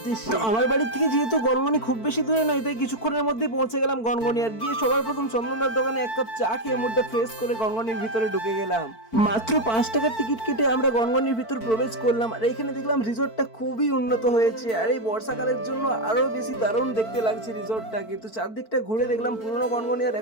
তো আমার বাড়ি থেকে যেহেতু গনগনি খুব বেশি দূরে নয়, তাই কিছুক্ষণের মধ্যে পৌঁছে গেলাম গনগনি। আর গিয়ে সবার প্রথম চন্দনদার দোকানে এক কাপ চা খেয়ে মুডটা ফ্রেশ করে গনগনির ভিতরে ঢুকে গেলাম। মাত্র 5 টাকার টিকিট কেটে আমরা গনগনির ভিতর প্রবেশ করলাম। আর এখানে দেখলাম রিসোর্টটা খুবই উন্নত হয়েছে, আর এই বর্ষাকালের জন্য আরো বেশি দারুণ দেখতে লাগছে রিসোর্টটা। কিন্তু চারদিকটা ঘুরে দেখলাম পুরনো গনগনি আর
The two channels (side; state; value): right; late; 4.5 ms